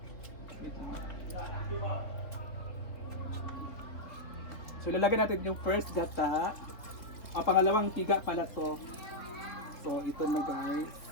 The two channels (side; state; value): right; late; 3.0 ms